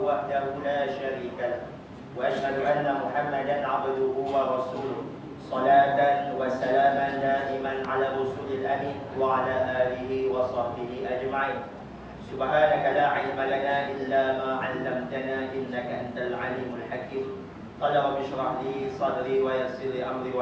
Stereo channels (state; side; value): identical; both; correlation 1.00